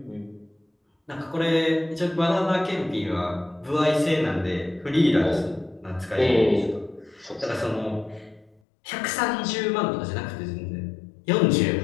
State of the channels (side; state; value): right; drops out; at 8.6 s